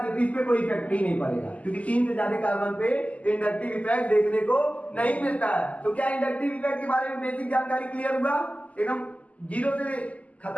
तो इस पे कोई इफेक्ट ही नहीं पड़ेगा, क्योंकि 3 से ज्यादा कार्बन पे इंडक्टिव इफेक्ट देखने को नहीं मिलता है। तो क्या इंडक्टिव इफेक्ट के बारे में बेसिक जानकारी क्लियर हुआ? एकदम जीरो से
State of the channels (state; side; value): late; right; 0.070 ms